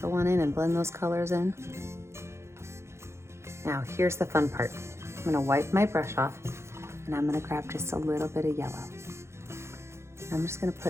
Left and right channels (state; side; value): late; left; 0.13 ms